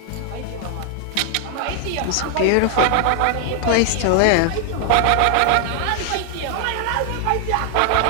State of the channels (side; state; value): both; different; correlation 0.00